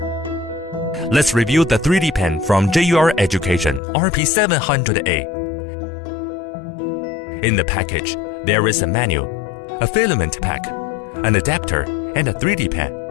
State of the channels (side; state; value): right; drops out; at 3.8 s